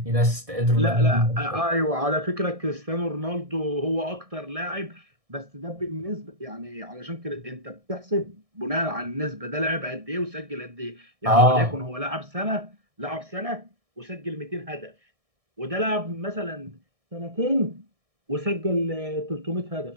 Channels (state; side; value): late; left; 1.6 ms